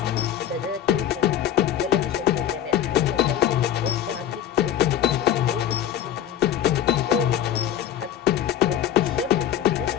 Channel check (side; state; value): right; quieter; 10.4 dB